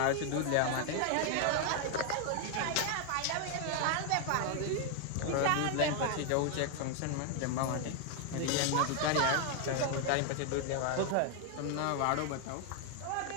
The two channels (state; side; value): different; both; correlation 0.00